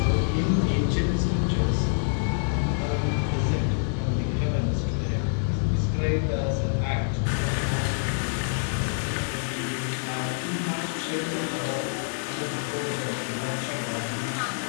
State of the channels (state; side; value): silent; right; 58 dB below the other